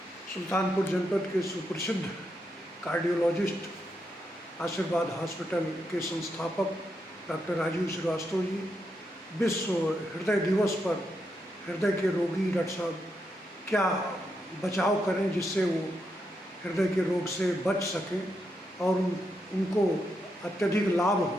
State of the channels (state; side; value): normal; both; correlation 0.82